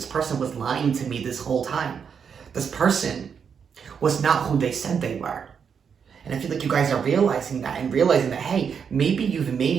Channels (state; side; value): quieter; left; 6.8 dB